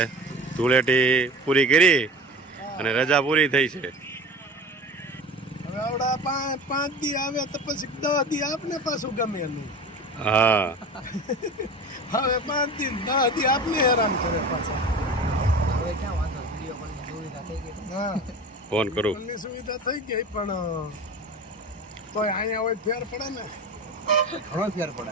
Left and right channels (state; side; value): normal; both; correlation 0.35